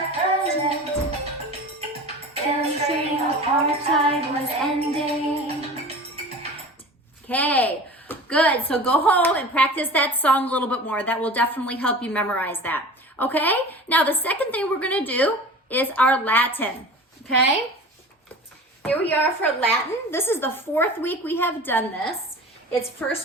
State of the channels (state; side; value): normal; both; correlation 0.37